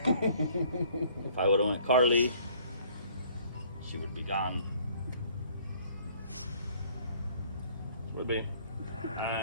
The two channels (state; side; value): inverted; both; correlation -0.58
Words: If I would have went Carly, she would be gone. Would be.